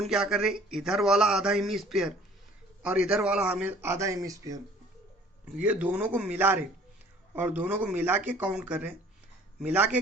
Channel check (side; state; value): both; normal; correlation 0.53